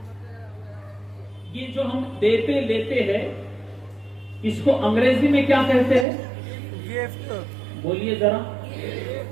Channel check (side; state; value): left; drops out; at 6.1 s